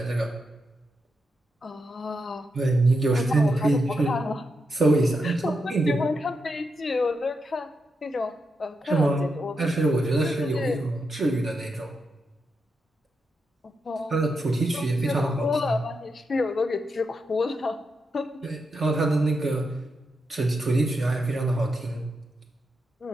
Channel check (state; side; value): normal; both; correlation 0.85